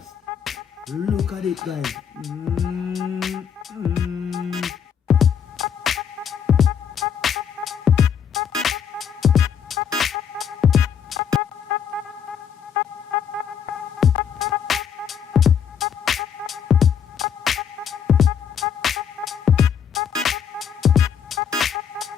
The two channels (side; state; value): right; quieter; 7.8 dB